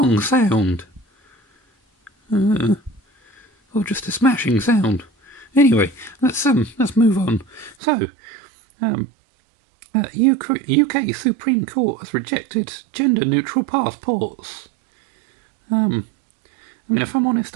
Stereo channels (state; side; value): drops out; left; at 7.8 s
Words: sound? or just a smashing sound. Anyway, let's move on. So, UK Supreme Court has rejected gender-neutral passports. I mean, if I'm honest,